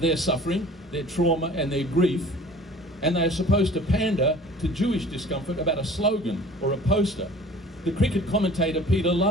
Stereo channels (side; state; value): both; normal; correlation 0.46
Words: suffering, their trauma and their grief, and they are supposed to pander to Jewish discomfort about a slogan or a poster. The cricket commentator Peter